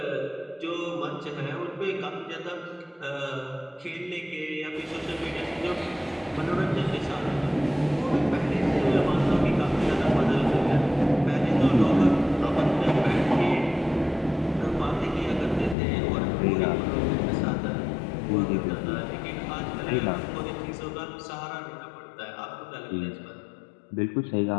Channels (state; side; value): drops out; right; at 15.8 s